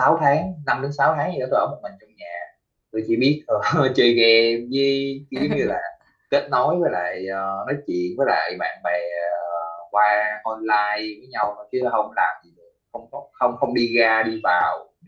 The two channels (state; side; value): identical; both; correlation 1.00